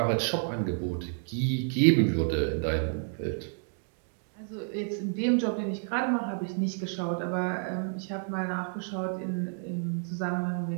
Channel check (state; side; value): silent; left; 58 dB below the other